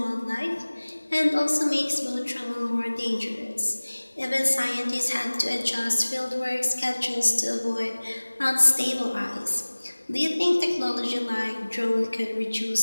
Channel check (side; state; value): both; inverted; correlation -1.00